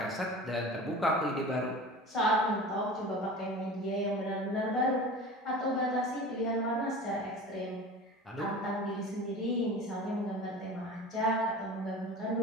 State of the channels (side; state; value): both; normal; correlation 0.36